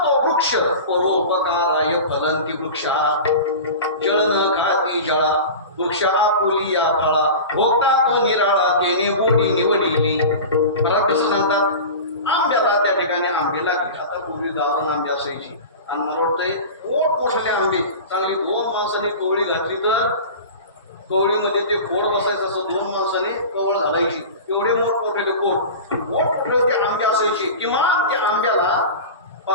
वृक्ष परोपकाराय फलंती वृक्षा जळ न खाती जळा वृक्षा पोली या फळा भोगता तो निराळा तेने गोडी निवडिली मला कसं सांगतात आंब्याला त्या ठिकाणी आंबे लागले आता पूर्वी गावाला आंबे असायची आणि मला वाटतंय मोठमोठे आंबे चांगली 2 माणसांनी कवळी घातली तर कवळीमध्ये ते खोड बसायचं असं 2 माणसांनी कवळ घालायची एवढे मोठमोठे मोठमोठे ते आंबे असायचे किमान त्या आंब्याला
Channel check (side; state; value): both; inverted; correlation -0.32